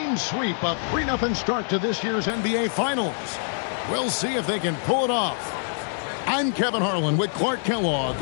sweep, a 3-0 start to this year's NBA Finals. We'll see if they can pull it off. I'm Kevin Harlan with Clark Kellogg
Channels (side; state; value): right; silent; digital silence